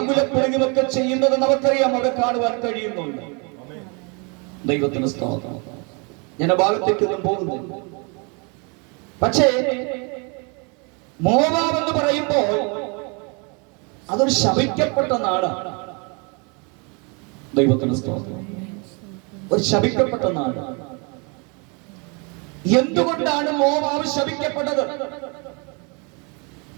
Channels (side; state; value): left; quieter; 32.8 dB